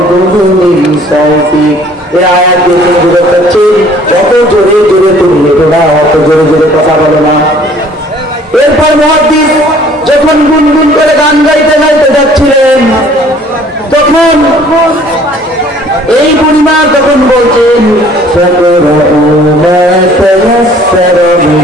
সাউতিক। এই আয়াত দিয়ে বুঝতে পারছি যত জোরে জোরে তুমি লেখো না, অত জোরে জোরে কথা বলো না। এরপর মুহাদ্দিস যখন গুনগুন করে গান গাইতে গাইতে যাচ্ছিলেন, তখন এই বুড়িমা তখন বলছেন,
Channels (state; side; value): normal; both; correlation 0.55